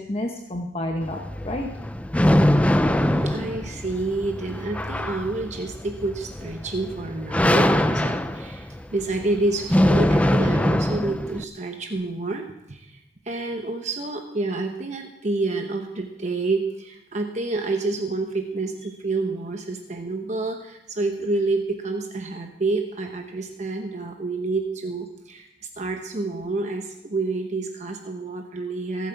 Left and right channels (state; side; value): normal; both; correlation 0.77